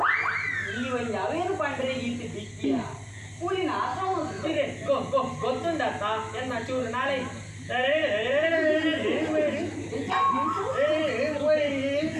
ಈ ಒಂದು ಅವೇನು ಪಂಡ್ರೆ ಇಂತ ದಿಕ್ಕಿಯ ಕೂಲಿನ ಆಶ್ರಮ ಗೊತ್ತುಂಡತ್ತ ಎನ್ನ ಚೂರು ನಾಳೆ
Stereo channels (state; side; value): identical; both; correlation 1.00